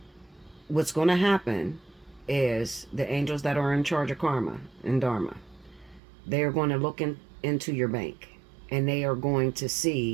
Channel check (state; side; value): drops out; left; at 6.0 s